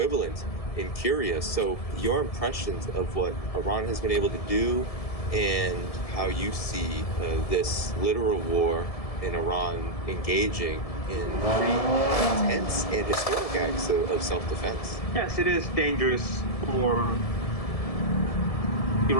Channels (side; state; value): right; late; 1.7 ms